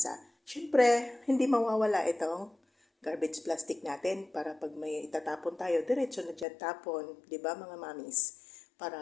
Siyempre, hindi mawawala itong garbage plastic natin para pag may itatapon tayo, diretso na dyan tapon, di ba mga mamis? Para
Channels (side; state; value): right; drops out; at 6.5 s